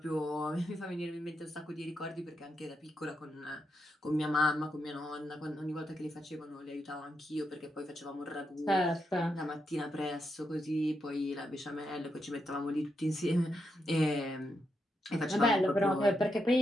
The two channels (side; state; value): both; normal; correlation 0.83